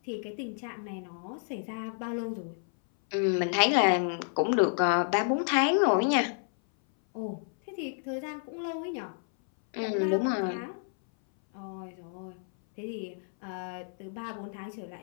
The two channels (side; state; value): right; silent; 58 dB below the other